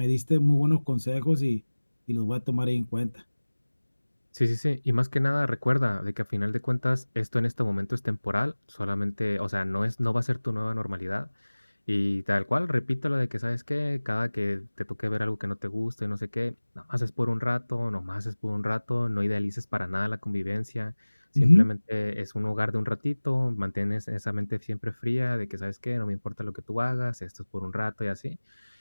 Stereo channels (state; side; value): inverted; both; correlation -1.00